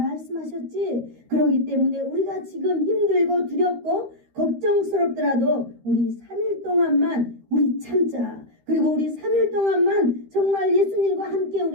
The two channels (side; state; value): left; late; 13 ms